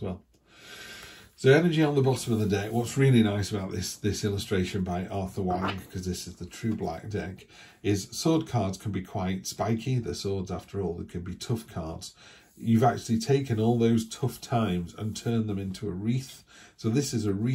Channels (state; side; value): identical; both; correlation 1.00